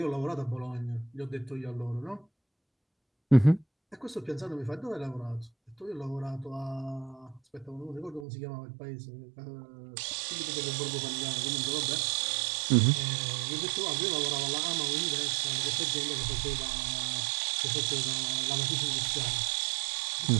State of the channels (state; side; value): drops out; left; at 8.2 s